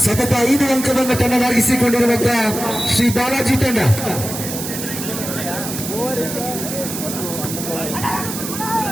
ಸತತ 5 ಅಂಕವನ್ನು ತನ್ನದಾಗಿಸಿಕೊಂಡಿರುವಂತಹ ಶ್ರೀ ಬಾಲಾಜಿ ತಂಡ.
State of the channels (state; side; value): noise; right; hiss, 7 dB below the sound